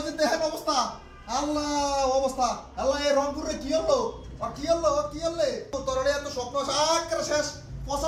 যে দেখেন অবস্থা, আল্লাহ অবস্থা, আল্লাহ এই রংপুরে কি হলো, কি হলো, কি হলে তোর এত স্বপ্ন আকারে শেষ।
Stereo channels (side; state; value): both; identical; correlation 1.00